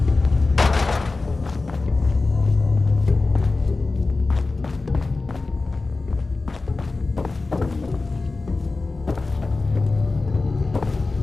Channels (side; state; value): right; quieter; 3.6 dB